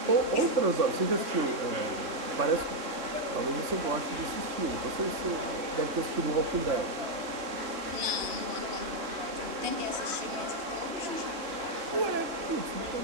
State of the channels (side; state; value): left; late; 3.6 ms